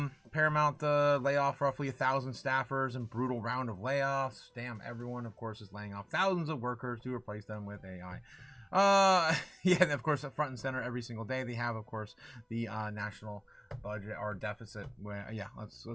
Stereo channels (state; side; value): identical; both; correlation 1.00